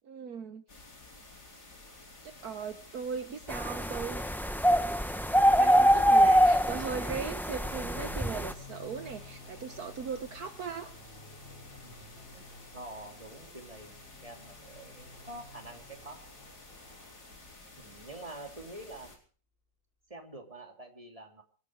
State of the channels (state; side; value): normal; both; correlation 0.82